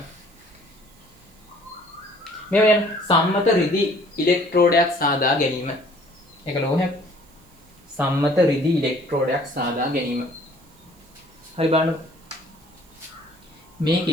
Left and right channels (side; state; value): right; noise; hiss, 29 dB below the sound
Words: මේ වෙන සම්මත රිදි ඉලෙක්ට්‍රෝඩයක් සාදා ගැනීම. ඒක ලෝහයක්. සම්මත රිදි ඉලෙක්ට්‍රෝඩයක් සාදා ගැනීම. හරි බලන්න.